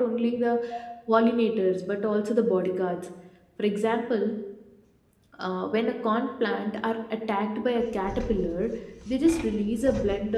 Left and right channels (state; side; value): identical; both; correlation 1.00